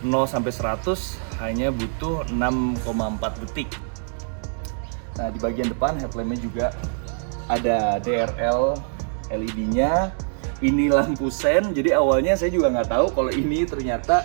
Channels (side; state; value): left; silent; digital silence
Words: 0 sampai 100 hanya butuh 6,4 detik. Nah, di bagian depan headlampnya juga ada DRL LED-nya. Ini lampu sen, jadi awalnya saya juga nggak tahu kalau ini ternyata